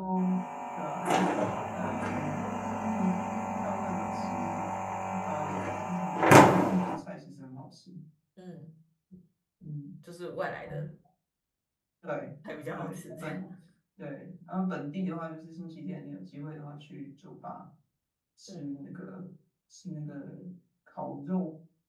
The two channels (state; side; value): identical; both; correlation 1.00